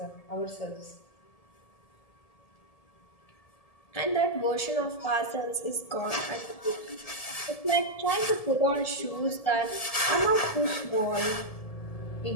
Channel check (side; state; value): right; late; 1.7 ms